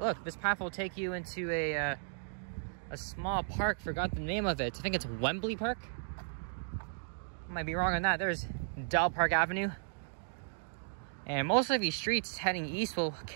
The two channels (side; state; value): left; silent; digital silence